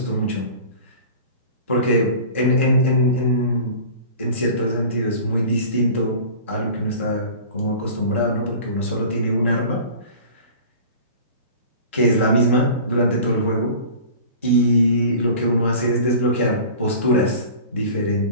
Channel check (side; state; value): both; inverted; correlation -0.40